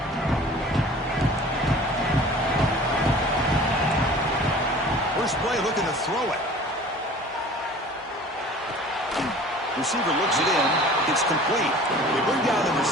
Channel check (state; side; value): normal; both; correlation 0.45